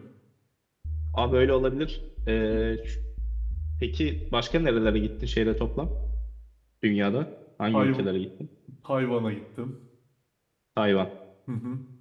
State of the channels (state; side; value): identical; both; correlation 1.00